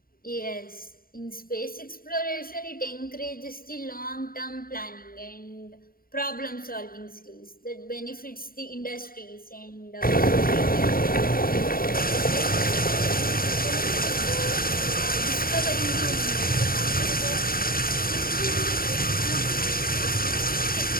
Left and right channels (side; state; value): right; late; 0.43 ms